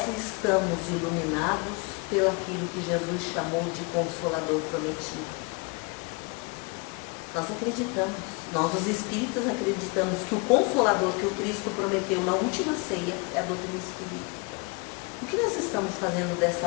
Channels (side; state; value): right; quieter; 29.5 dB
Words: estamos iluminados pelo aquilo que Jesus chamou de Consolador prometido. Nós acreditamos, nós os espíritas acreditamos que o Consolador que o Cristo prometeu na última ceia é a doutrina espírita. O que nós estamos fazendo